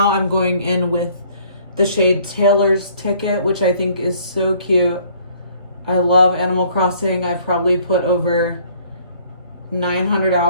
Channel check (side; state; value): both; inverted; correlation -0.59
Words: I'm going in with the shade Taylor's Ticket, which I think is so cute. I love Animal Crossing. I probably put over 900